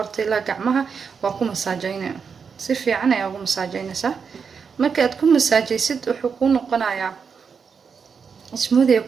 ila gacmaha waa ku masaajeynaa si fiican ayaa ugu masaajeynaysaa marka aad ku masaajeysid wuxuu ku noqonayaa smoothie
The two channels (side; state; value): left; quieter; 6.0 dB